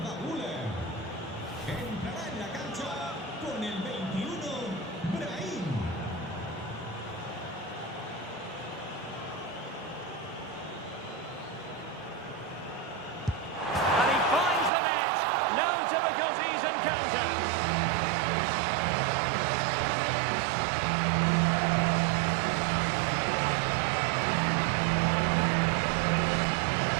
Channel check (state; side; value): drops out; left; at 14.7 s